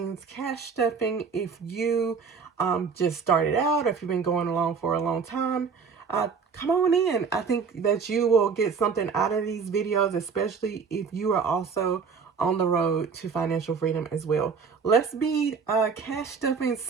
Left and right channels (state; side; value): quieter; left; 5.6 dB